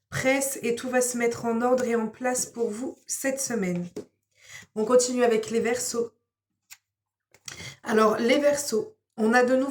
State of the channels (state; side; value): identical; both; correlation 1.00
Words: pressent et tout va se mettre en ordre et en place pour vous cette semaine. On continue avec les Verseaux. Alors, les Verseaux, on a de